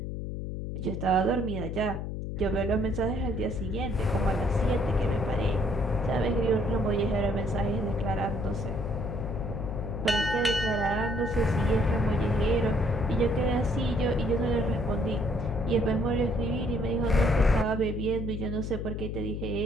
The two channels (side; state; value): left; noise; hum, 5 dB below the sound